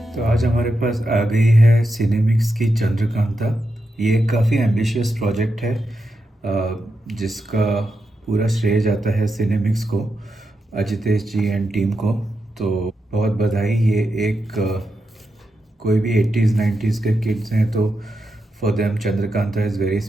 तो आज हमारे पास आ गई है सिनेमिक्स की चंद्रकांता। ये काफ़ी एम्बिशियस प्रोजेक्ट है जिसका पूरा श्रेय जाता है सिनेमिक्स को, अजितेश जी एंड टीम को। तो बहुत बधाई। ये एक कोई भी 80s 90s के किड्स हैं तो for them Chandrakanta is very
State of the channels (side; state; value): both; normal; correlation 0.87